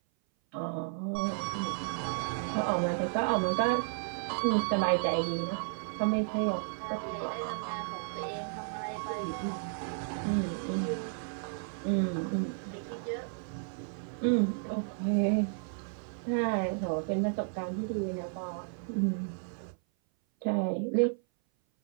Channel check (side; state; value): left; silent; 56 dB below the other